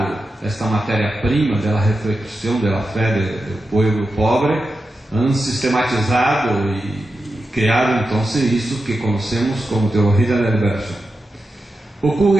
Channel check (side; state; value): both; normal; correlation 0.90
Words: esta matéria-prima da reflexão da fé do povo pobre, han sistematizado e criado então isso que conhecemos como teoria da liberação.